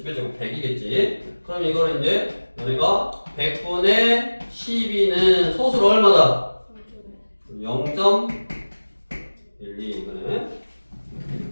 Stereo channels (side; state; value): both; inverted; correlation -1.00